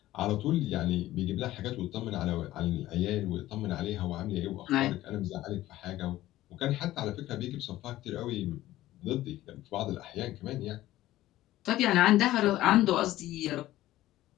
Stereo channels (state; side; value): quieter; right; 15.3 dB